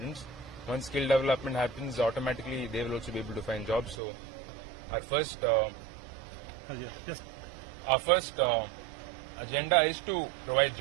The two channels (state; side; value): drops out; left; at 4.0 s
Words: Once skill development happens, automatically they will also be able to find jobs. So our first agenda is to provide